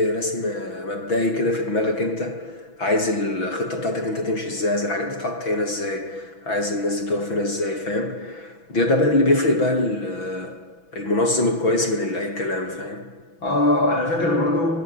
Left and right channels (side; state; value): right; late; 6.1 ms